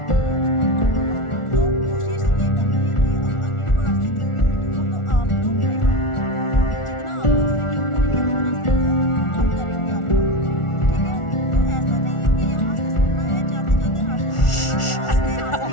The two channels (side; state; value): right; late; 1.4 ms